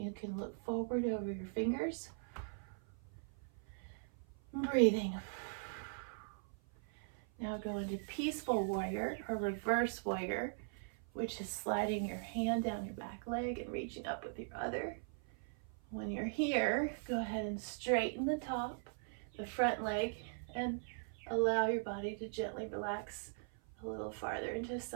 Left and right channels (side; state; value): left; silent; 51 dB below the other